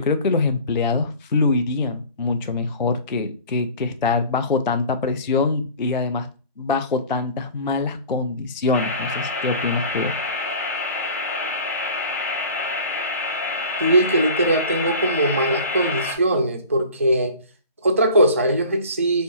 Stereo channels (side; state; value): both; inverted; correlation -0.42